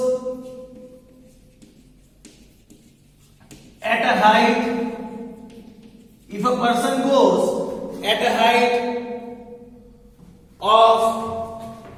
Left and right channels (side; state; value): both; identical; correlation 1.00